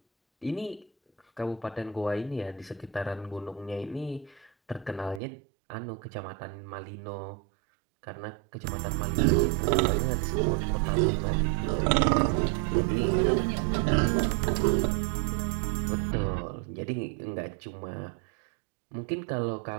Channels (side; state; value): left; drops out; at 5.2 s